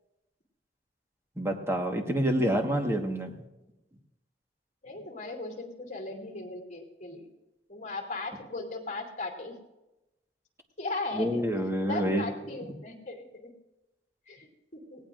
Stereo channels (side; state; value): both; normal; correlation 0.55